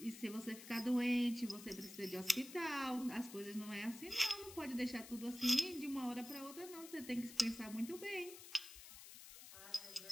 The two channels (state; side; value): noise; left; hiss, 14 dB below the sound